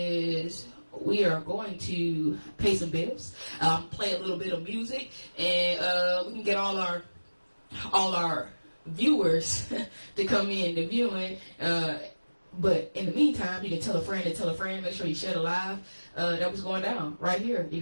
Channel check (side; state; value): both; inverted; correlation -1.00